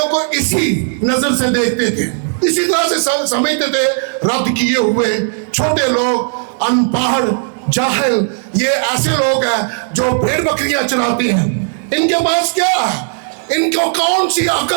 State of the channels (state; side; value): silent; left; digital silence